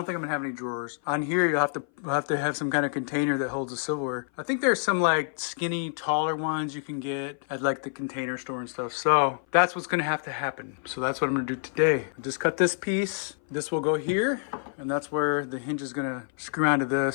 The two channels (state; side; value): silent; right; 57 dB below the other